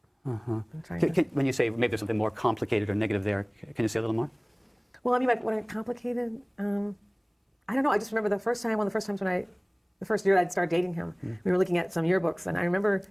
I'm trying to. When you say maybe there's something more complicated or negative there, can you say a little more? Well, I mean, when I complicated, I don't know. I just remember the first year I'd started dating him, we were looking at some yearbooks, and I remember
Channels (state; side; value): identical; both; correlation 1.00